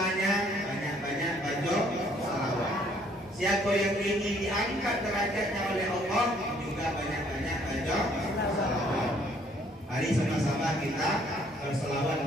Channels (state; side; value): normal; both; correlation 0.63